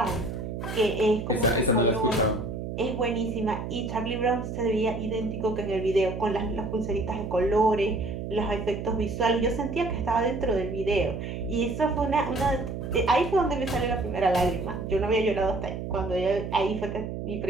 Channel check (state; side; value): noise; right; hum, 6 dB below the sound